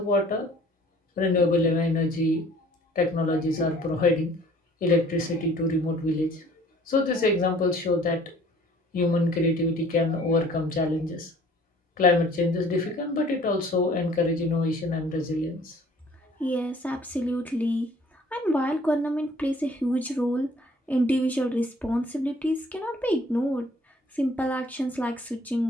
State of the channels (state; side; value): normal; both; correlation 0.54